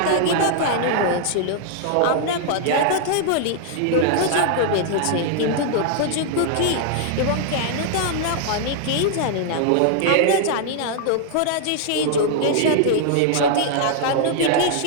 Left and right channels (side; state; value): both; different; correlation 0.00